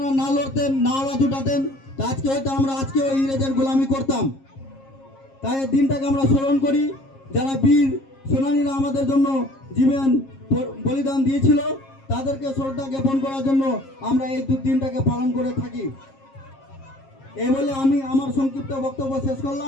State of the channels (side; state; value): right; late; 7.4 ms